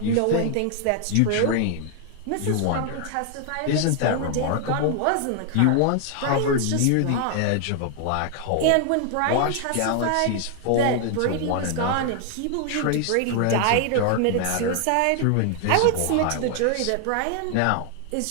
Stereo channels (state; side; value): different; both; correlation 0.00